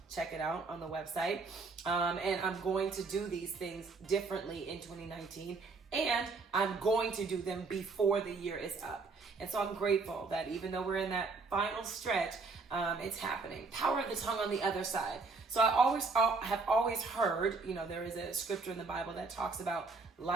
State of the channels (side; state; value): left; quieter; 4.1 dB